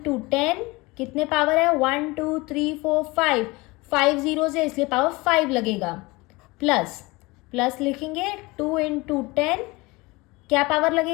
10 कितने पावर है, 1 2 3 4 5, 5 जीरोस है इसलिए पावर 5 लगेगा प्लस प्लस लिखेंगे 2 इंटू 10, क्या पावर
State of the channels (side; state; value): right; quieter; 23.2 dB